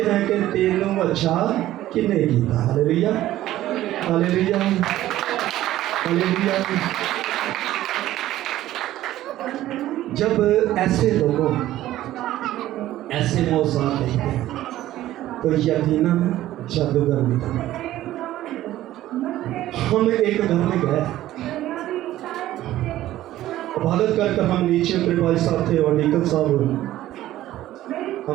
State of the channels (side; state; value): left; quieter; 14.3 dB